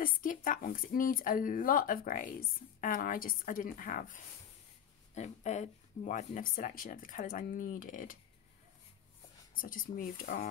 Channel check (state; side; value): quieter; right; 9.3 dB